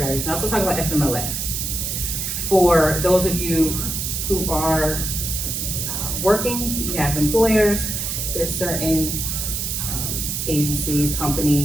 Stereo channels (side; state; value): right; noise; hiss, 2 dB below the sound